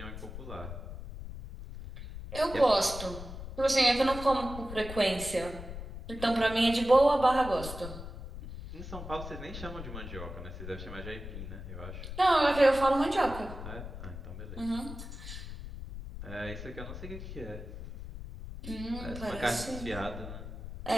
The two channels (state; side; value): noise; left; rumble, 10 dB below the sound